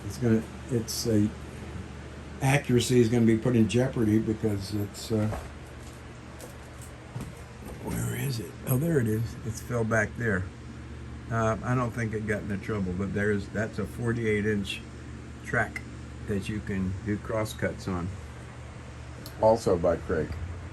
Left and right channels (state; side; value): identical; both; correlation 1.00